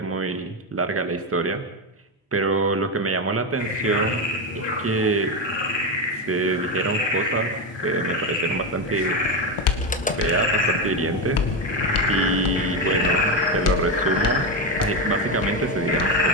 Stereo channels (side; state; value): both; normal; correlation 0.12